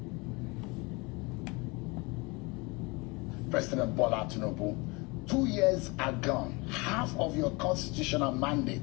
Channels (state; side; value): quieter; right; 26.7 dB